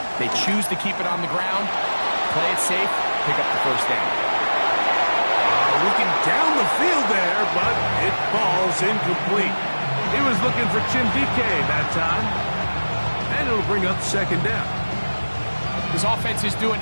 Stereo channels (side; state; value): both; inverted; correlation -1.00